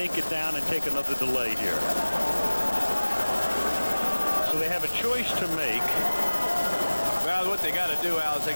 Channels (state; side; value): inverted; both; correlation -1.00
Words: it down and take another delay here. So they have a choice to make. Well, what they got to do, Al, is they